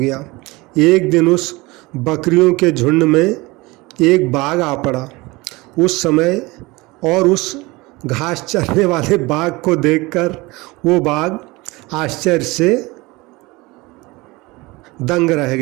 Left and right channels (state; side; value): quieter; left; 22.7 dB